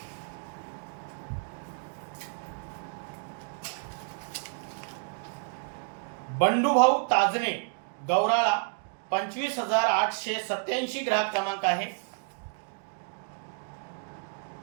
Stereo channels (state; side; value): silent; left; 58 dB below the other